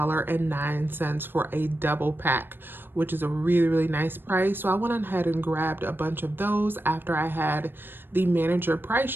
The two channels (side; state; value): left; late; 0.098 ms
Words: for a double pack, which is a really, really nice price. So I went ahead and grabbed a bunch of those after I had the manager